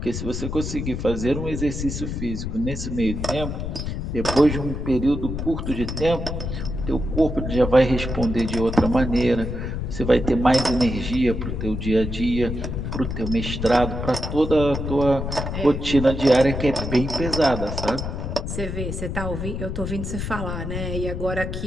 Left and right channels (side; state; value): left; noise; rumble, 4 dB below the sound